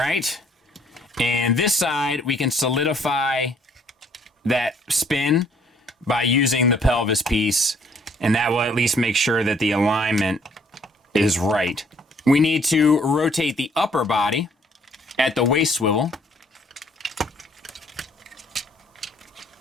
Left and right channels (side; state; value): both; normal; correlation 0.63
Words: And this side, we can solidify that spin by using the pelvis piece, and that will at least make sure that the alignment is right. We need to rotate the upper body at the waist swivel.